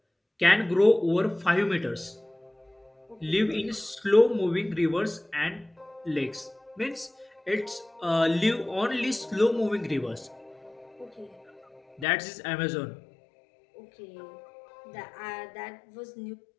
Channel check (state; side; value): drops out; right; at 12.1 s